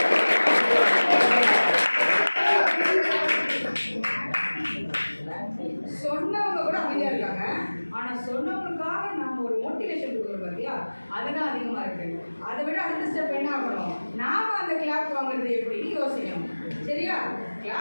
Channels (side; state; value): both; inverted; correlation -1.00